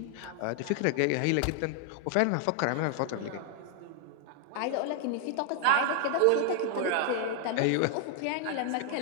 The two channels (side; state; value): both; different; correlation 0.00